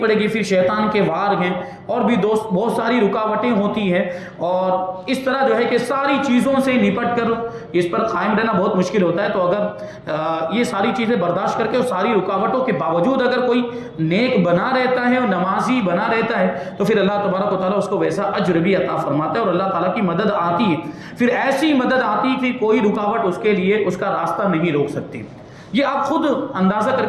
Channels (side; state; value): both; identical; correlation 1.00